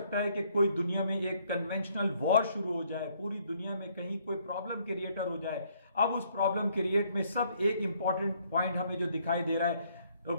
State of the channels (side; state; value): both; inverted; correlation -0.67